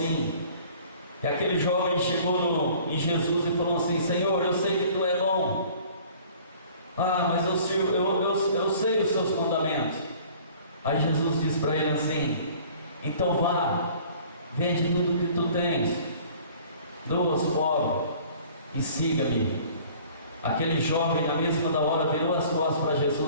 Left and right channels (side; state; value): both; inverted; correlation -0.51